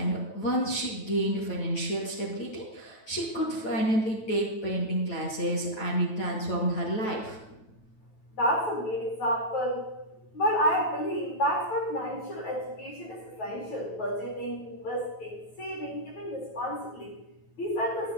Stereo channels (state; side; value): late; right; 9.1 ms